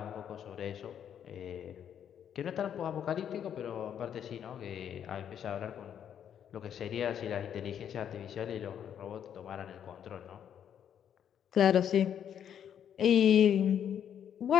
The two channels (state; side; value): quieter; right; 9.1 dB